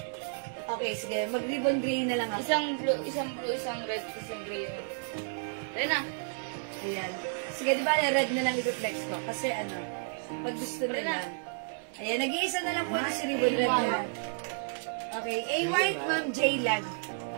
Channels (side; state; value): left; silent; digital silence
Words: Okay, sige. Mag-ribbon gray na lang ako. Isang blue, isang red, isang gray. Ayan na. Ayan. Sige, di ba red na lang i-reflex ko? Kasi ano, pag gusto nila. Ayan, nag-iisa na lang po ito si ribbon red na lang. Okay, A white, Ma'am J Lag.